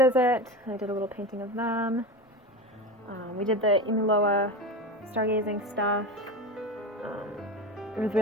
I did a little painting of them. We did the Imiloa stargazing stuff. It was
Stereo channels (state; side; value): normal; both; correlation 0.24